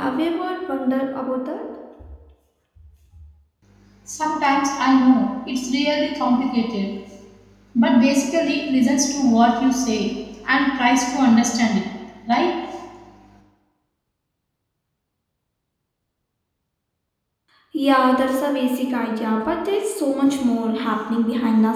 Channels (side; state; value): both; identical; correlation 1.00